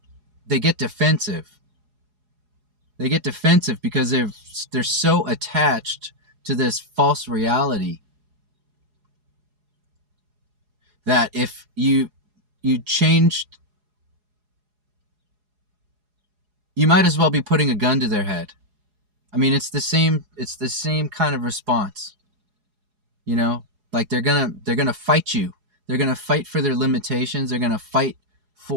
get defensive. They get defensive because they're so attached to this false reality that if you changed, you might as well be putting a gun to their head. I mean, it's the same kind of response. You know, like they're gonna fight you. They're gonna fight for their limitations. They're gonna fight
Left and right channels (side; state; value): left; late; 4.8 ms